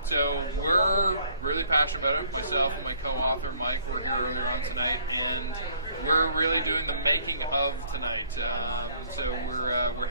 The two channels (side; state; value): both; inverted; correlation -0.60